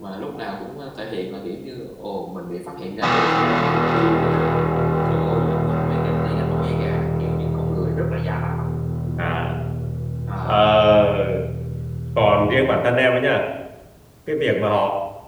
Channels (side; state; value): both; identical; correlation 1.00